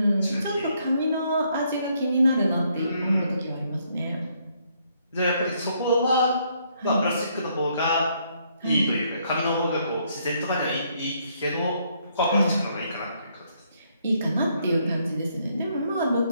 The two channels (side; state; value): both; inverted; correlation -0.71